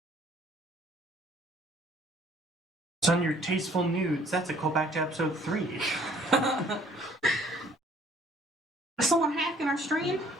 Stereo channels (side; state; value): both; normal; correlation 0.59